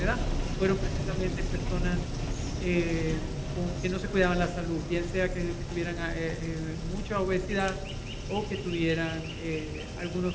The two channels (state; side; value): identical; both; correlation 1.00